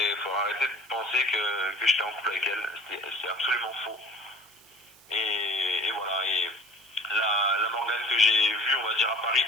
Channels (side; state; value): right; noise; hiss, 25 dB below the sound